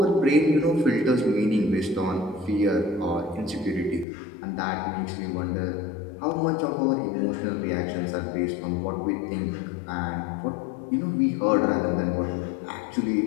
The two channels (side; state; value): right; drops out; at 4.0 s